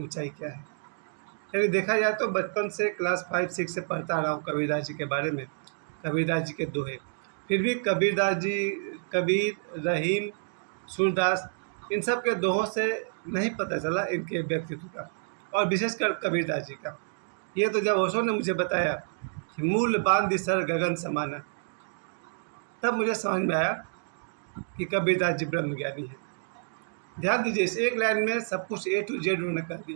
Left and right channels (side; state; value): left; silent; digital silence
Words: क्या है। यदि देखा जाए तो बचपन से क्लास 5-6 से पढ़ता आ रहा हूँ कबीरदास जी के बारे में, कबीरदास जी के दोहे। फिर भी कबीरदास जी, कबीर, रहीम, सूरदास, इन सब के दोहों से नहीं पता चला इनके व्यक्तित्व का, और विशेषकर कबीरदास जी का। ये तो जब ओशो ने मुझे बताया कि मूल बांध सर गगन समाना, तब मुझे समझ में आया कि कबीरदास जी ब्रह्मज्ञानी हैं। ध्यान दीजिए, इस एक लाइन में सब कुछ A to Z उन्होंने कह